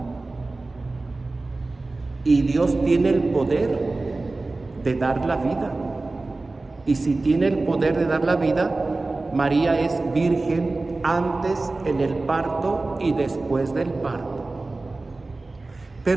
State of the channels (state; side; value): quieter; left; 3.3 dB